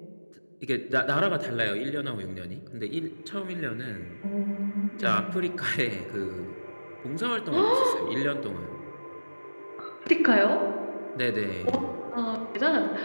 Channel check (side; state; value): both; inverted; correlation -1.00